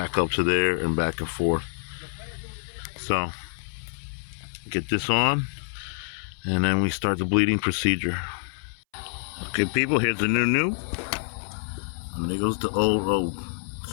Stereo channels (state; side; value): silent; right; 60 dB below the other